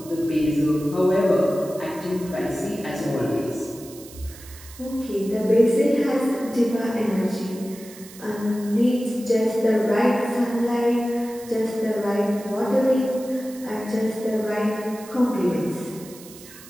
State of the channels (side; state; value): right; noise; hiss, 18 dB below the sound